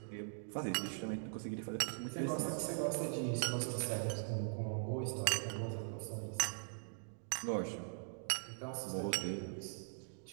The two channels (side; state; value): left; silent; digital silence